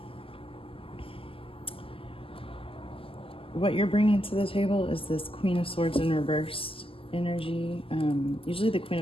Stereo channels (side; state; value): right; late; 0.26 ms